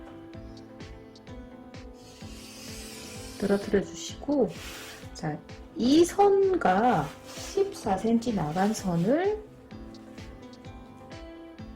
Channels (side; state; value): both; identical; correlation 1.00